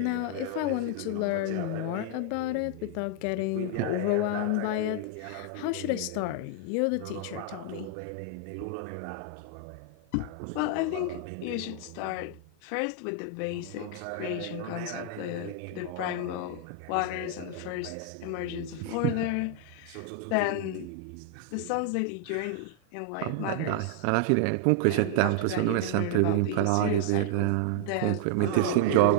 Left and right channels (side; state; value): both; different; correlation 0.00